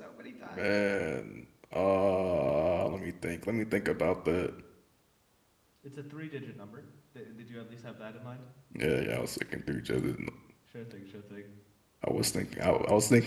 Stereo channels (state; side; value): identical; both; correlation 1.00